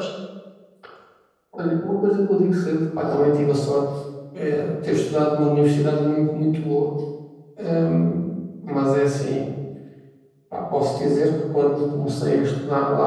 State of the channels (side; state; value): both; identical; correlation 1.00